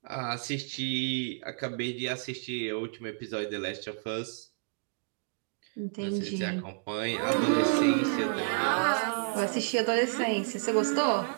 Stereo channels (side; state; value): left; silent; digital silence